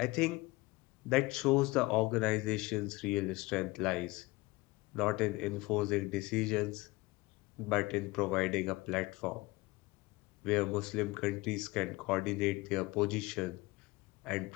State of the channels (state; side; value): quieter; right; 22.1 dB